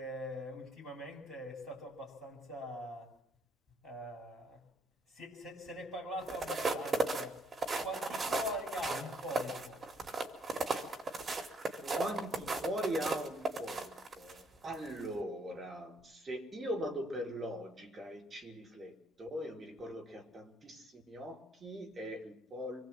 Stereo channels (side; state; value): both; normal; correlation 0.69